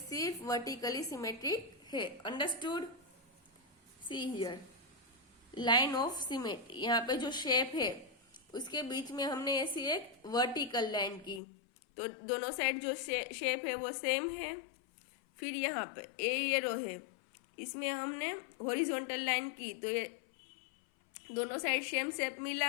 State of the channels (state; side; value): drops out; right; at 11.4 s